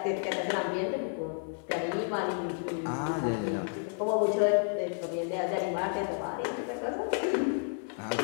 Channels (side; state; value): right; silent; 57 dB below the other